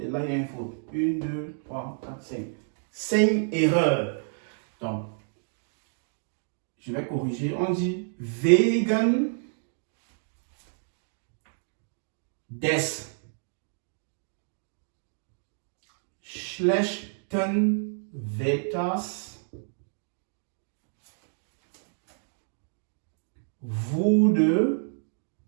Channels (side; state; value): left; silent; digital silence